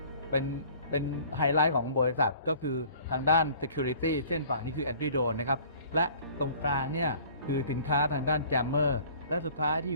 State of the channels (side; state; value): both; inverted; correlation -0.50